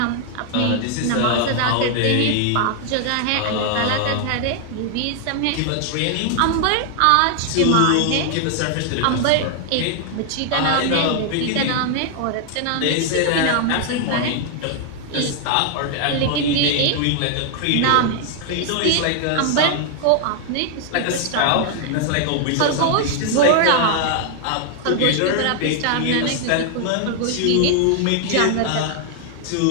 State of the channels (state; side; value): different; both; correlation 0.00